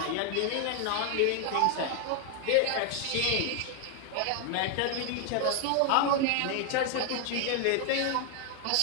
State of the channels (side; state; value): both; different; correlation 0.01